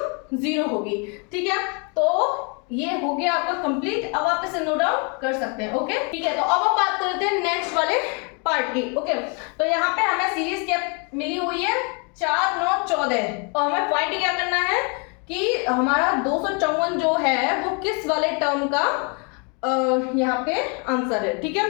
0 होगी, ठीक है। तो ये हो गया आपका कंप्लीट, अब आप इसे नोट डाउन कर सकते हैं, ओके, ठीक है। तो अब हम बात करते हैं नेक्स्ट वाले पार्ट की, ओके। तो यहाँ पे हमें सीरीज क्या मिली हुई है, 4 9 14, और हमें फाइंड क्या करना है कि हमारा 254 जो है वो किस वाले टर्म का यहाँ पे आंसर है, ठीक है।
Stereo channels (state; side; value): quieter; right; 35.3 dB